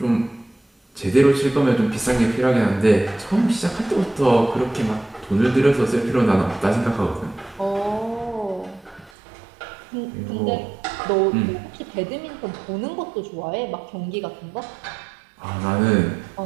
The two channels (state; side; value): drops out; left; at 9.1 s